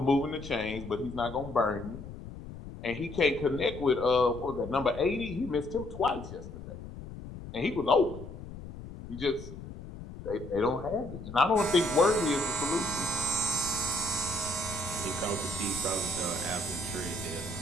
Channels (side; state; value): left; noise; rumble, 12 dB below the sound